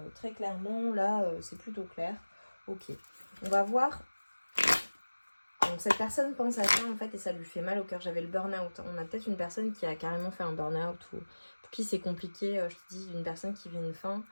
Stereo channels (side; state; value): both; inverted; correlation -1.00